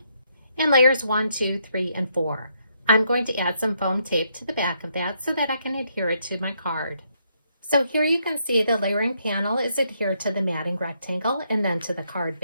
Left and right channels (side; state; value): both; inverted; correlation -0.75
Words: and layers 1, 2, 3, and 4. I'm going to add some foam tape to the back of that so that I can adhere it to my card. So here you can see the layering panel is adhered to the matting rectangle and then to the card